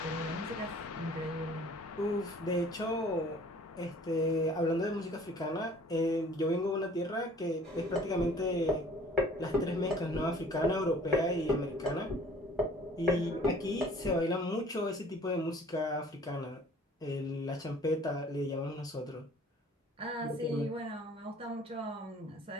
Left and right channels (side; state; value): both; normal; correlation 0.52